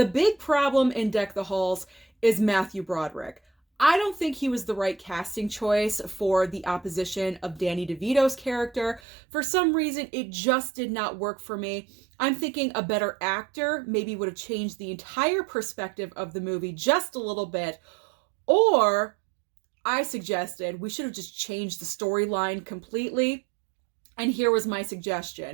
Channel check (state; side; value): drops out; left; at 9.0 s